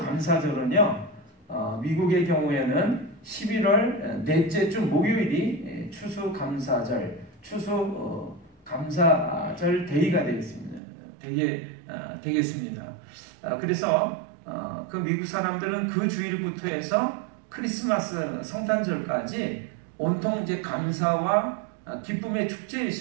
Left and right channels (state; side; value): drops out; left; at 10.8 s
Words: 미국의 경우에는 11월 넷째 주 목요일이 추수감사절, 추수감사절 데이가 되겠습니다. 그래서 그 미국 사람들은 그 주일부터 해서 크리스마스 성탄절까지 온통 이제 감사와 기쁨의 축제의